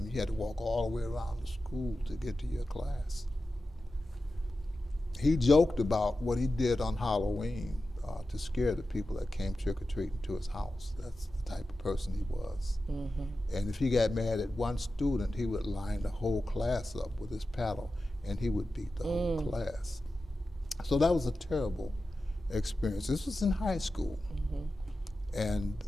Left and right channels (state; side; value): normal; both; correlation 0.93